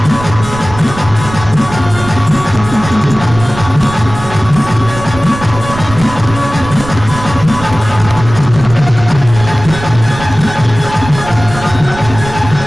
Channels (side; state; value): right; noise; rumble, 12 dB below the sound